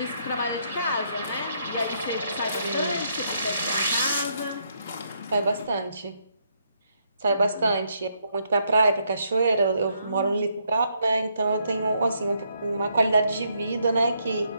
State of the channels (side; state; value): both; inverted; correlation -0.75